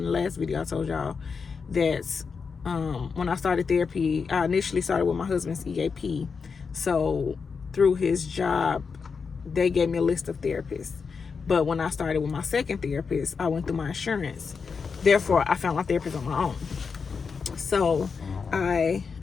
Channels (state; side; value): quieter; right; 5.4 dB